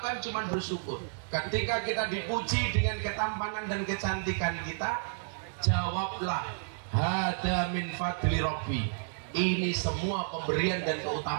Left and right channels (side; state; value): left; silent; 57 dB below the other